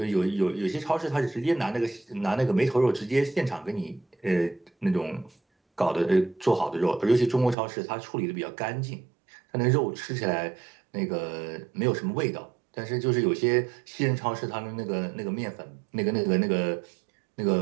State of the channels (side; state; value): left; drops out; at 7.6 s